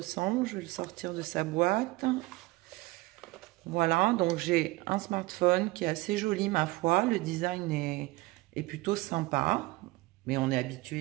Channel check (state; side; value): quieter; left; 21.2 dB